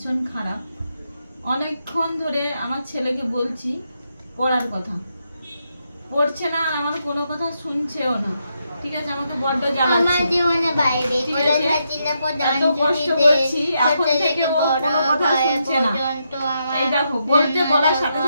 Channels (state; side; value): inverted; both; correlation -0.81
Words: খারাপ। অনেকক্ষণ ধরে আমার ছেলেকে বলছি পড়ার কথা, পড়ছে না, আর আমার কোনো কথা শুনছেও না। ঠিক আছে, আমাকে বড্ড জ্বালাচ্ছে। এত কষ্ট করছি, এখন থেকে ও কোনো কথা শুনছে না। এই দেখো, বলার সাথে